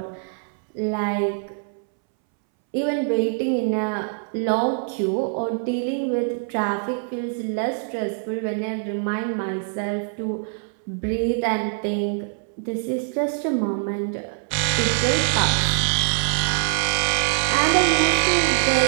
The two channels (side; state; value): left; silent; 63 dB below the other